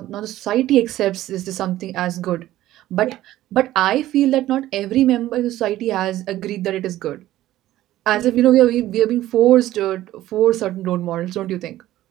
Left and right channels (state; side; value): quieter; left; 14.6 dB